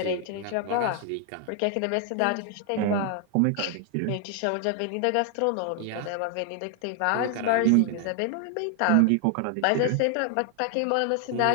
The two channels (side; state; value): both; different; correlation 0.00